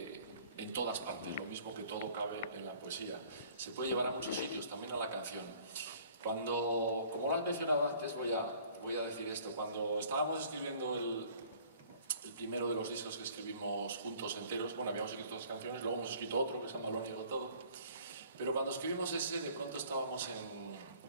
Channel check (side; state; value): both; inverted; correlation -0.53